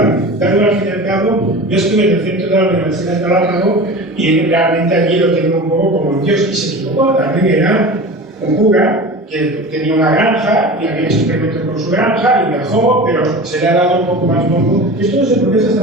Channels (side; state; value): both; normal; correlation 0.34